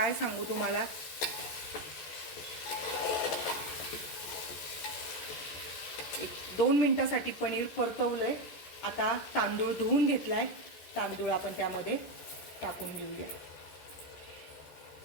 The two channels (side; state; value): right; late; 14 ms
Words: सांगू तुम्हाला. एक 2 मिनिटासाठी पनीर परतवलंय. आता तांदूळ धुवून घेतलाय, तांदूळ आपण त्यामध्ये टाकून घेऊया.